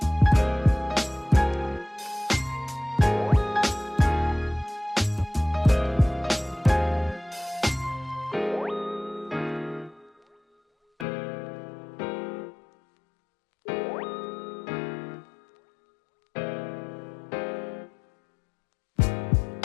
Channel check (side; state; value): right; drops out; at 11.1 s